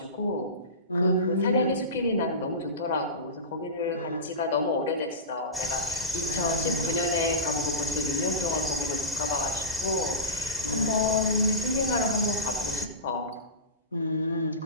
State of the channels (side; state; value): both; normal; correlation -0.19